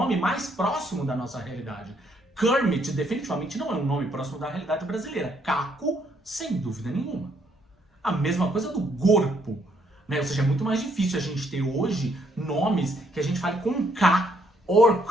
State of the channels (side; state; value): both; normal; correlation 0.71